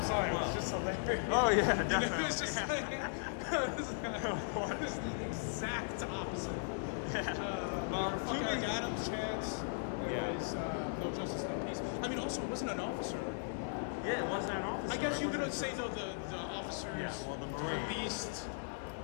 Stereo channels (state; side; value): silent; right; 53 dB below the other